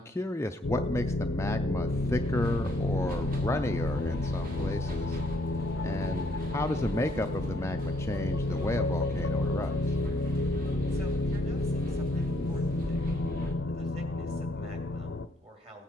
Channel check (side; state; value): both; normal; correlation 0.69